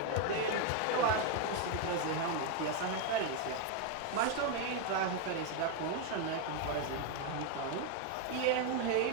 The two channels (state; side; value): different; both; correlation 0.01